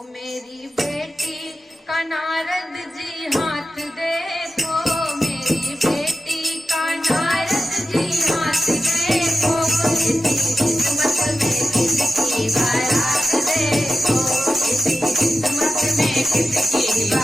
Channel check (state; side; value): normal; both; correlation 0.92